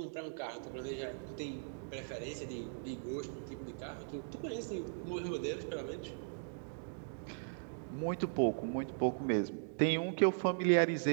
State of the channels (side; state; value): left; silent; digital silence